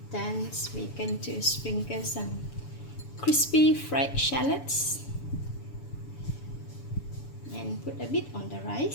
Then we're going to sprinkle some crispy fried shallots and put a bit on the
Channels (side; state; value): right; late; 7.0 ms